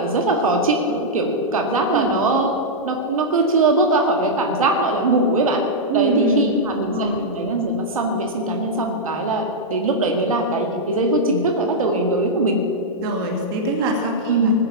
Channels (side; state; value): both; normal; correlation -0.07